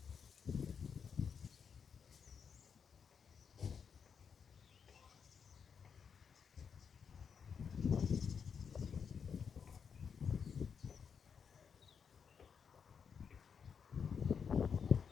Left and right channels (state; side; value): quieter; right; 6.6 dB